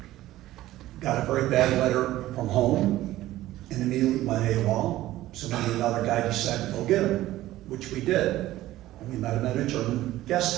got a very bad letter from home and immediately went AWOL. So me and another guy decided to go get him, which we did. And we met him at a German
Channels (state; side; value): quieter; left; 15.4 dB